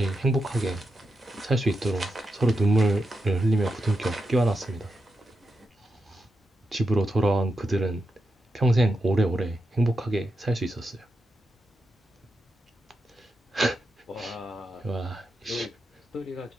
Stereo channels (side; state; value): both; normal; correlation 0.87